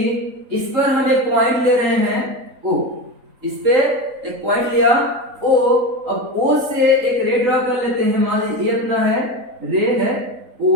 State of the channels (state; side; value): late; left; 3.8 ms